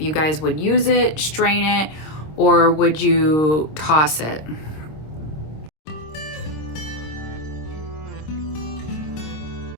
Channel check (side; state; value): right; late; 26 ms